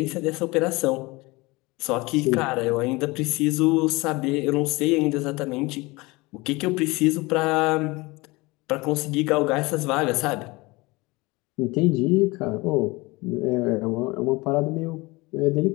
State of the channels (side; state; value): right; quieter; 23.4 dB